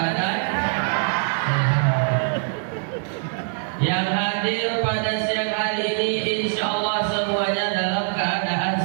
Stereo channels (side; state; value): left; silent; 63 dB below the other